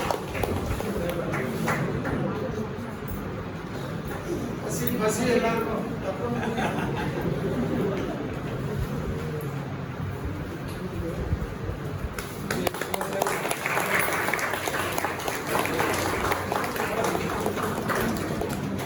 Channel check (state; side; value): identical; both; correlation 1.00